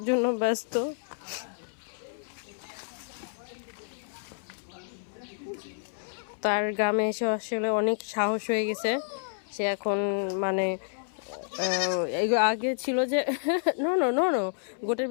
জন্য ব্যস্ত। তার গ্রামে এসে আসলে অনেক সাহস হয়ে গেছে। সে এখন মানে আগে ছিল যে নো নো নো নো গোটের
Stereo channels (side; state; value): right; silent; 58 dB below the other